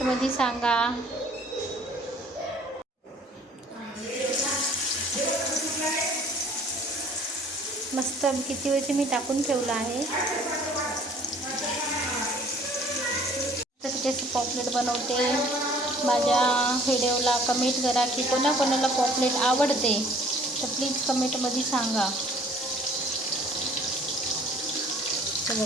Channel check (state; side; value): normal; both; correlation 0.55